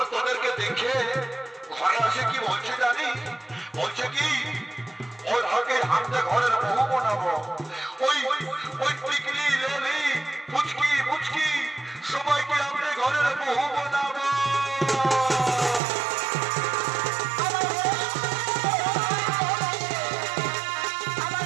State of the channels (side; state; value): left; drops out; at 15.8 s